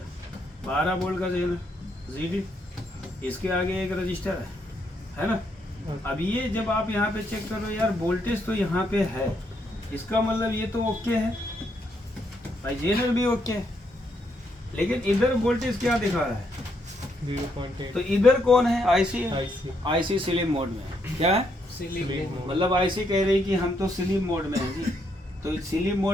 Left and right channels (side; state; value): both; normal; correlation 0.76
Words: 12 वोल्ट का जेनर जीडी, इसके आगे एक रजिस्टर है ना। अब ये जब आप यहाँ पे चेक करो यार, वोल्टेज तो यहाँ पे है, इसका मतलब ये तो ओके है भाई, जेनर भी ओके है, लेकिन इधर वोल्टेज क्या दिखा रहा है? 0.8। तो इधर कौन है? आईसी है। आईसी आईसी स्लीप मोड में है। क्या है? Sleep mode. मतलब आईसी कह रही कि हम तो स्लीप मोड में हैं जी। तो स्लीप